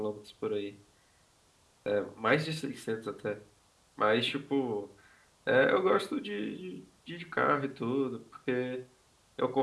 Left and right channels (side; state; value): both; identical; correlation 1.00